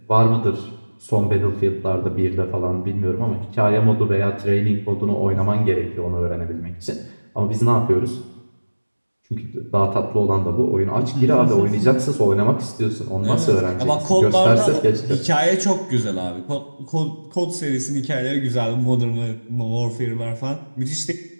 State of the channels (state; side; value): inverted; both; correlation -1.00